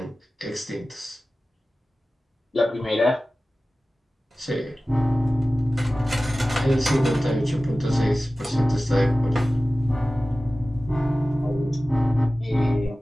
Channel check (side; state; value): both; normal; correlation 0.96